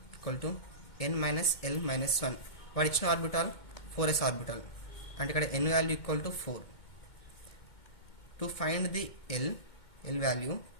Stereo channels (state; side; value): late; right; 2.2 ms